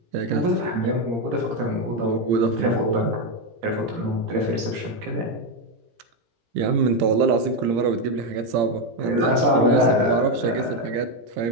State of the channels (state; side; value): late; left; 17 ms